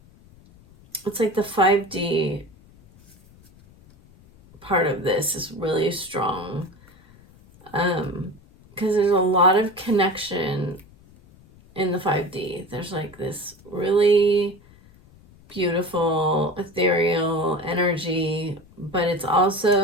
It's like the 5D part of this is really strong. Because there's a lot of connection in the 5D. There's like this really beautiful, ethereal energy, but it's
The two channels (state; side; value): noise; left; rumble, 26 dB below the sound